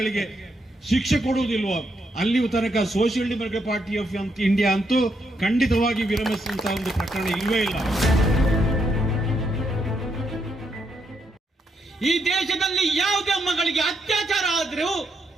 ಶಿಕ್ಷೆ ಕೊಡುವುದಿಲ್ವೋ ಅಲ್ಲಿಯೂ ತನಕ social democratic party of India ಅಂತೂ ಖಂಡಿತವಾಗಿ ವಿರಮಿಸುವಂತಹ ಒಂದು ಪ್ರಕರಣ ಇಲ್ವೇ ಇಲ್ಲ. ಈ ದೇಶದಲ್ಲಿ ಯಾವುದೇ ಮಗಳಿಗೆ ಅತ್ಯಾಚಾರ ಆದ್ರೂ,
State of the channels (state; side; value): normal; both; correlation 0.78